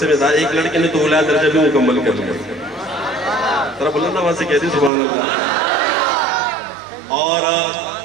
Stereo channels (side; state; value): left; drops out; at 4.9 s